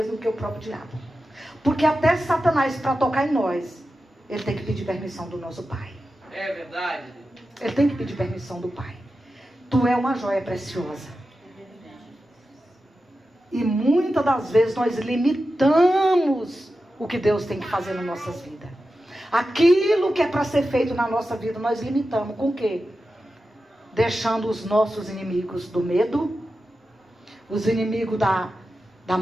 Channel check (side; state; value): both; normal; correlation 0.92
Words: do que o próprio diabo. Porque até Satanás, para tocar em nós, ele tem que pedir permissão do nosso Pai. É verdade. Ele tem que pedir permissão do Pai. Tu é uma joia preciosa. E muitas das vezes nós limitamos o que Deus tem que fazer nas nossas vidas. Aquilo que é para ser feito na nossa vida, nós limitamos. Com o quê? Deixando os nossos inimigos do medo, os inimigos da